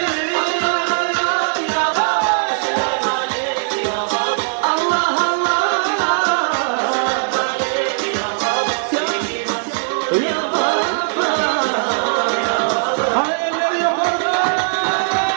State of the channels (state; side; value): silent; left; 56 dB below the other